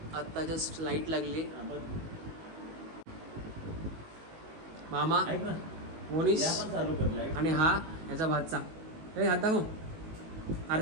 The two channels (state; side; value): late; left; 19 ms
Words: आता जस्ट लाईट लागली. मामा, मोनिश आणि हा ह्याचा भातचा. हात दाखव,